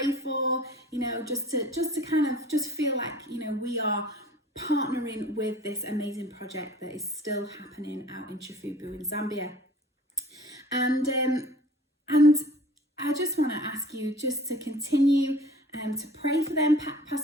for, just to kind of just feel like, we are partnering with this amazing project that is still happening out in Chifubu in Zambia. And I just want to ask you just to continue to pray for them.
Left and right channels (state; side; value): normal; both; correlation 0.47